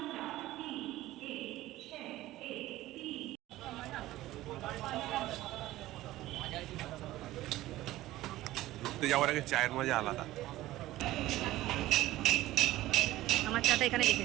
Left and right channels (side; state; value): left; quieter; 16.1 dB